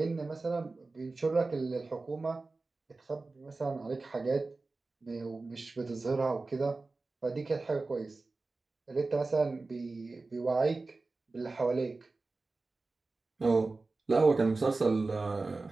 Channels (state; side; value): quieter; left; 3.6 dB